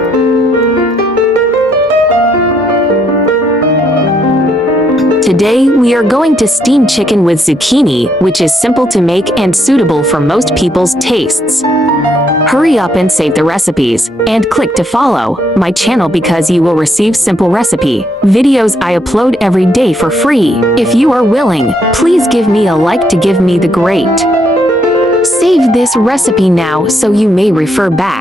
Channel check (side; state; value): both; normal; correlation 0.73